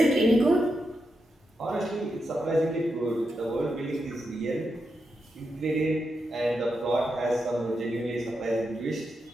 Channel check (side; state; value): both; normal; correlation 0.86